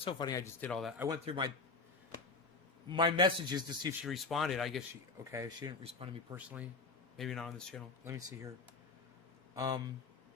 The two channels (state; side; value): quieter; right; 4.0 dB